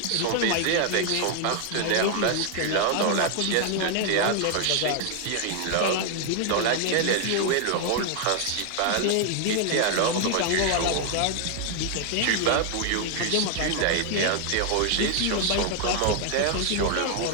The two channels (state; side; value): different; both; correlation 0.00